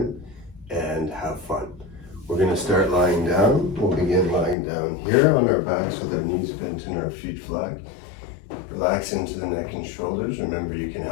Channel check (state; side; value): drops out; right; at 4.5 s